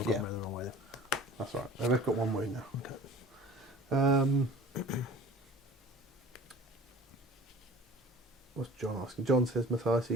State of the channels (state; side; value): normal; both; correlation 0.44